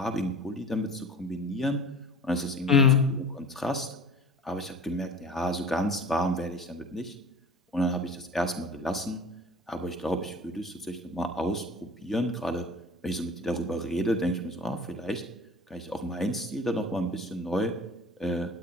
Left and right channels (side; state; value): both; normal; correlation 0.41